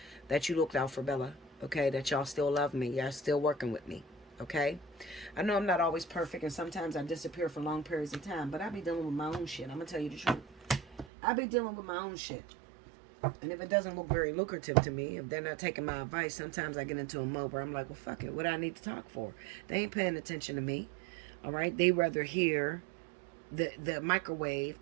that you looked out for Bella. Okay? That y'all still love me. Y'all still working with me. Okay? I know I'm not always perfect, and sometimes I disappear for long periods of time, but I be dealing with my own shit. I'm going to tell you the truth. I be dealing with my own shit. And if it doesn't look very lucrative to me, if they're not taking my advice, sometimes I get into a mode where I'm like, well, fuck it. What do I need to talk for? They ain't paying attention to me. All right? They rather hear the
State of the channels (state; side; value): drops out; left; at 11.1 s